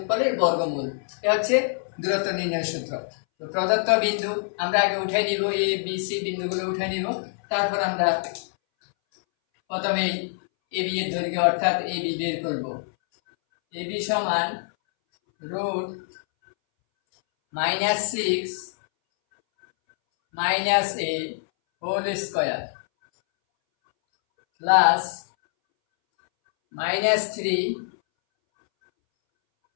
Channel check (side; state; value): right; silent; 62 dB below the other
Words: বর্গমূল। এটা হচ্ছে দূরত্ব নির্ণয়ের সূত্র। তো প্রদত্ত বিন্দু আমরা আগে উঠে নিব, এ বি সি বিন্দুগুলো উঠে নিব। তারপর আমরা প্রথমে এ বি এর দৈর্ঘ্য অর্থাৎ এ বি বের করব। এ বি সমান √-6 - a whole square plus -3